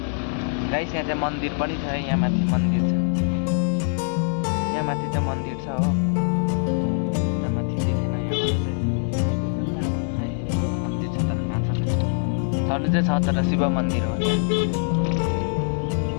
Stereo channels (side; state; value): right; silent; 63 dB below the other